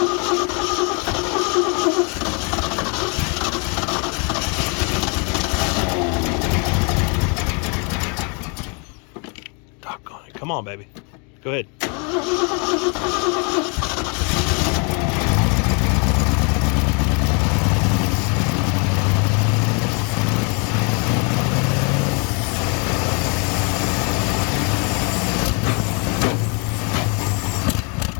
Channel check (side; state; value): right; quieter; 34.9 dB